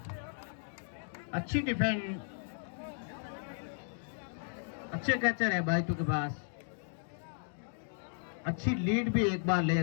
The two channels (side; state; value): right; silent; digital silence